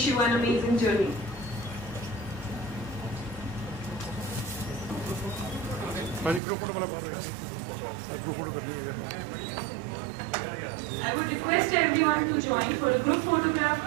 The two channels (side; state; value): left; drops out; at 6.4 s